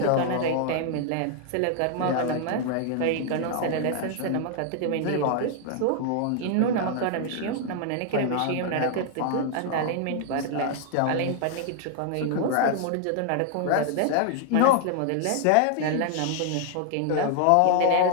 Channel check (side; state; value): both; different; correlation 0.00